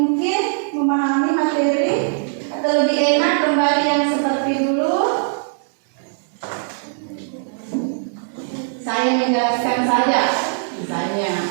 memahami materi? Atau lebih enak kembali yang seperti dulu? Saya menjelaskan saja misalnya.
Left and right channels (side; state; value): left; silent; digital silence